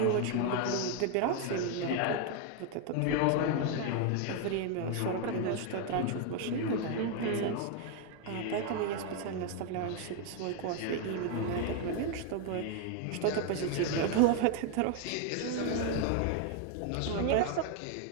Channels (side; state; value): both; different; correlation 0.01